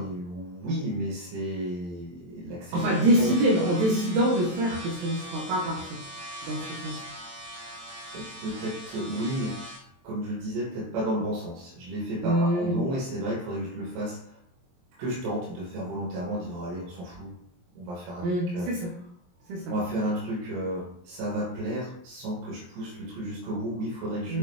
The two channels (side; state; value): left; late; 23 ms